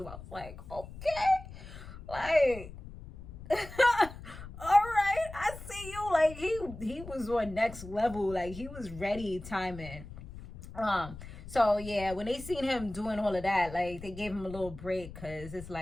I was like, okay, like all right, I see you. Like, he was on next level. Like, he was ready timing. So yeah, when they seen him doing all of that, like they gave him a little break because it's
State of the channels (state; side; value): noise; left; rumble, 14 dB below the sound